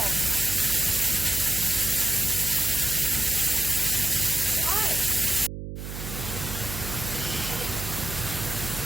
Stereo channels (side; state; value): right; noise; hum, 8 dB below the sound